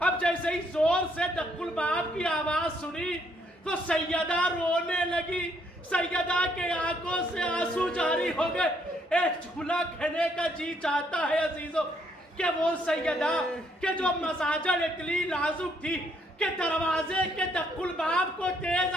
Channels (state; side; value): normal; both; correlation 0.70